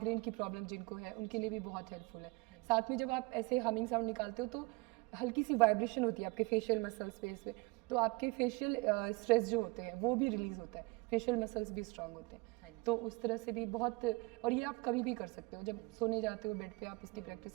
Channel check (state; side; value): quieter; left; 25.4 dB